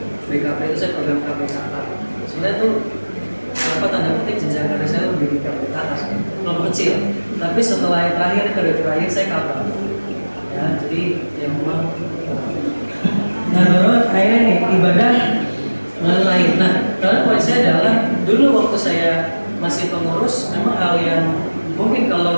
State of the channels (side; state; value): both; inverted; correlation -1.00